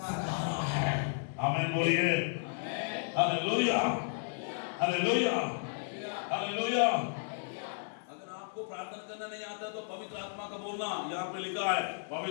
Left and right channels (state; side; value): silent; right; 55 dB below the other